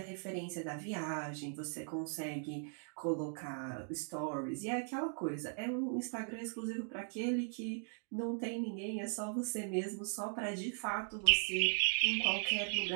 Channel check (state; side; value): silent; left; 52 dB below the other